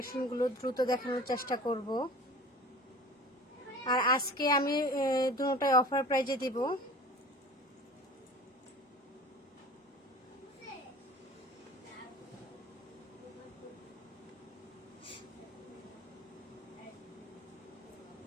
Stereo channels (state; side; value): normal; both; correlation 0.40